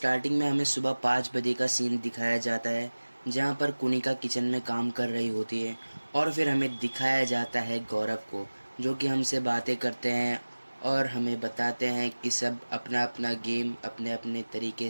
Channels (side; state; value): both; inverted; correlation -1.00